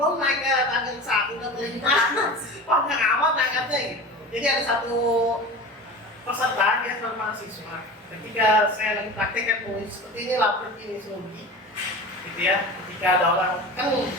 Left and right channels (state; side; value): normal; both; correlation 0.33